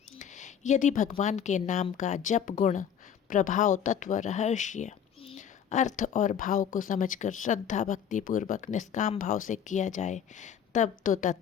यदि भगवान के नाम का जप गुण, प्रभाव, तत्व, रहस्य, अर्थ और भाव को समझकर श्रद्धा भक्ति पूर्वक निष्काम भाव से किया जाए, तब तो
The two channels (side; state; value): right; quieter; 8.3 dB